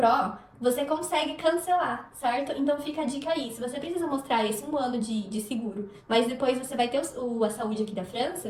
você consegue cancelar, certo? Então fica a dica aí, se você precisa mostrar esse 1 ano de seguro, mas depois você vai ter a saúde aqui da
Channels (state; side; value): identical; both; correlation 1.00